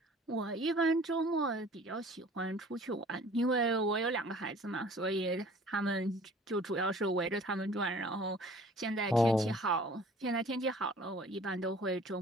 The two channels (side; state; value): both; normal; correlation 0.50